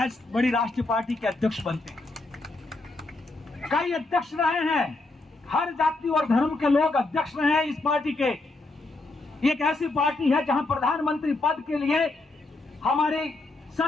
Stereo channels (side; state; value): right; quieter; 3.1 dB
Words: राष्ट्रीय पार्टी के अध्यक्ष बनते हैं। कई अध्यक्ष रहे हैं, हर जाति और धर्म के लोग अध्यक्ष रहे हैं इस पार्टी के। एक ऐसी पार्टी है जहां प्रधानमंत्री पद के लिए हमारे